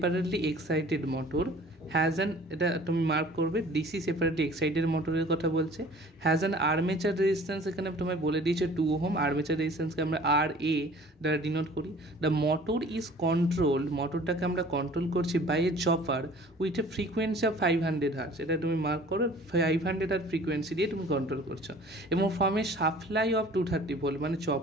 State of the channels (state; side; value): normal; both; correlation 0.49